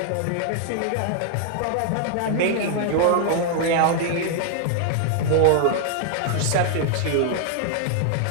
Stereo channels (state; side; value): different; both; correlation 0.00